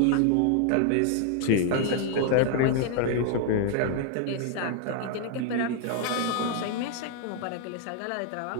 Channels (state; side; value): different; both; correlation 0.00